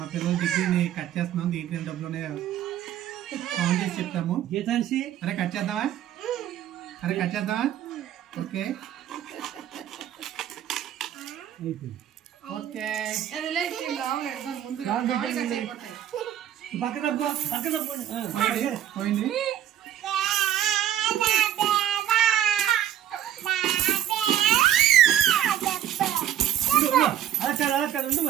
పిల్లల డిగ్రీని కట్ చేస్తున్నాం. దీంట్లో డబ్బులు కౌంట్ చేసి చెప్తాము. అరే కట్ చేద్దామా? Okay okay. పోయింది.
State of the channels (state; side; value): quieter; left; 11.0 dB